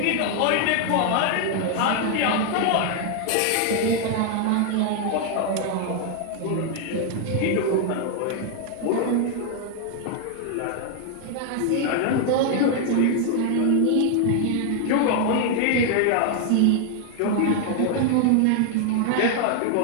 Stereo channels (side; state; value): both; different; correlation 0.00